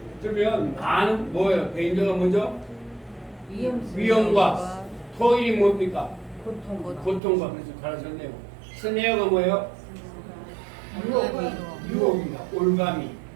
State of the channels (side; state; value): left; drops out; at 7.2 s